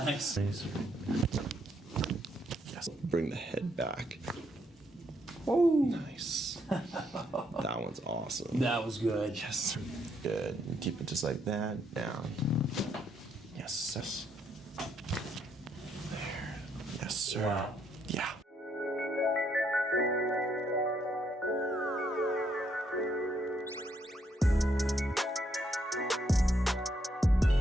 Yes, bring the head back. Woo! Nice. That one's awesome. That was good. Yes. Good. And keep it just like that. Down. Yes. Yes. There. Yes, sir. Wow. Yeah.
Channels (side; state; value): both; normal; correlation 0.74